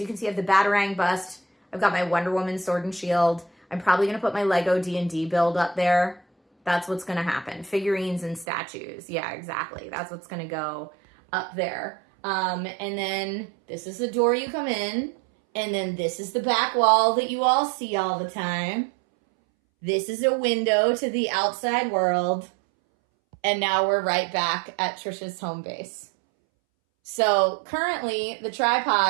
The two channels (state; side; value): drops out; left; at 8.5 s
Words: you can see I have the Batarang bust. I've got my Wonder Woman sword and shield. I'm probably going to put my Lego D&D build up there. That's what's going to happen. Figurines and statues. Yeah, exactly. That's what's going to go up there. And then this is the door you come in. And then this is the back wall that you all see all the time. This is a window to the outside world. And now we're right back at Trisha's home base. So currently the